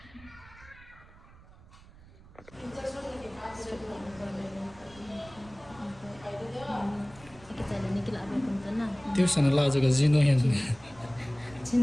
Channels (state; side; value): noise; right; rumble, 22 dB below the sound